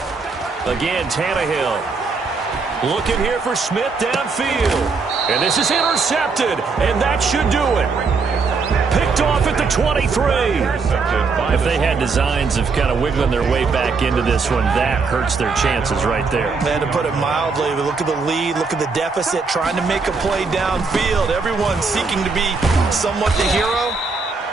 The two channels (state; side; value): quieter; left; 4.6 dB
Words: 21. Again, Tannehill. Looking here for Smith downfield. And this is intercepted, and that should do it. Picked picked off at the 23. If they had designs of kind of wiggling their way back into this one, that hurts their chances right there. And to put it mildly, look at the lead, look at the deficit, trying to make a play downfield. Everyone seeking to be somewhat the hero.